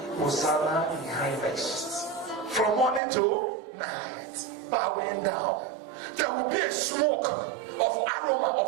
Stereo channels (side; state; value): left; drops out; at 3.0 s